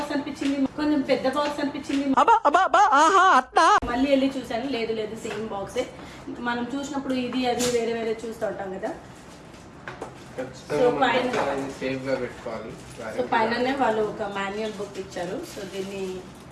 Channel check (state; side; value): identical; both; correlation 1.00